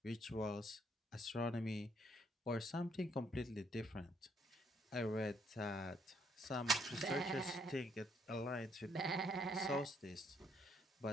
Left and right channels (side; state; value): both; normal; correlation 0.70